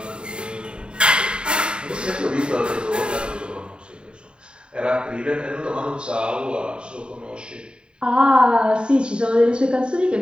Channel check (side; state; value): left; late; 0.052 ms